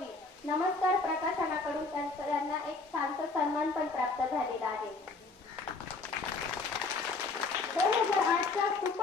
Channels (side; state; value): right; quieter; 3.8 dB